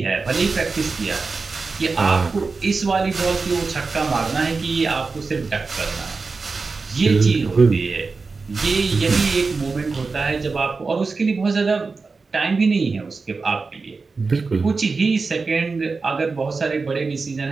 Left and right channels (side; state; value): left; quieter; 4.3 dB